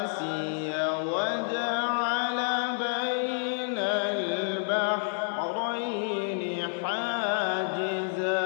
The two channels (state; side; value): silent; right; 56 dB below the other